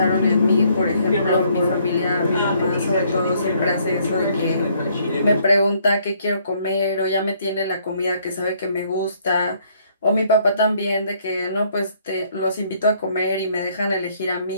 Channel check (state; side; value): inverted; both; correlation -0.66